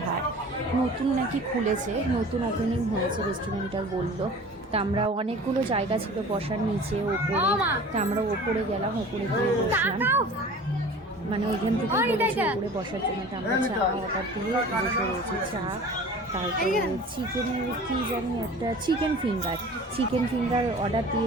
হাট, নতুন নাকি খুলেছে, নতুন ওপেনিং হয়েছে রেস্টুরেন্টটা বললো। তা আমরা অনেকগুলো জায়গা ছিল বসার, নিচে ওপরে। তা আমরা ওপরে গেলাম, ওপরে গিয়ে বসলাম, মানে ওইখান থেকে ওপরে বসার জন্য। তা আমরা চা অর্ডার দিয়ে বসে রয়েছি। চা, তারপরে চিকেনের কি জানি একটা চিকেন ফিঙ্গার অর্ডার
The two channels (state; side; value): normal; both; correlation 0.42